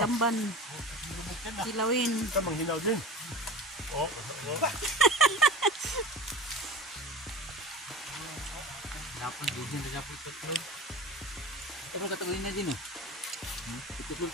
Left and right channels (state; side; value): normal; both; correlation 0.34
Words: Kilawin. Ito manghinaw din. Oh. Dapat din sa dapat tutlog. Ito mo katawin na din, oh. Tutlog